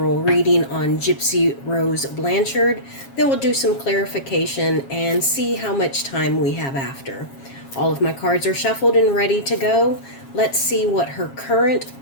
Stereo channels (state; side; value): late; right; 7.4 ms